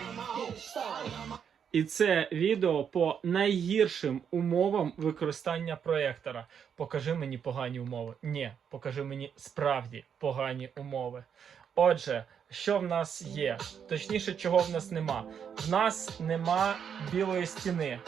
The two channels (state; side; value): quieter; left; 7.7 dB